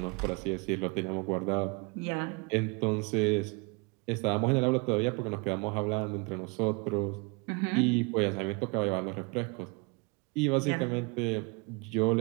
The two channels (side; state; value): left; quieter; 29.4 dB